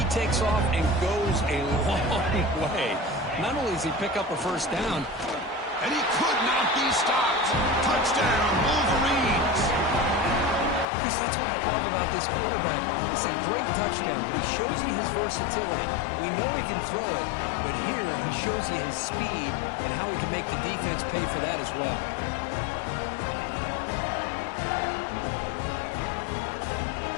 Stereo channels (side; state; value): right; drops out; at 10.9 s